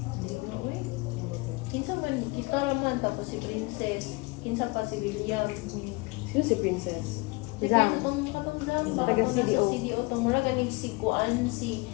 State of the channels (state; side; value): quieter; right; 25.7 dB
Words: Kinsa man, kita naman, tapos si Princess. Kinsa pa si William. Sino si Princess? Zang. Katong Zang. Taga Katong CDO. nasa CDO. Itong mura ganing si Kuan, si